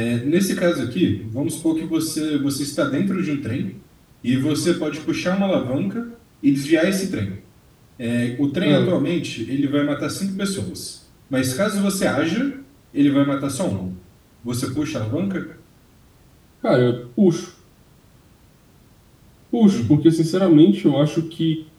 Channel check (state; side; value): identical; both; correlation 1.00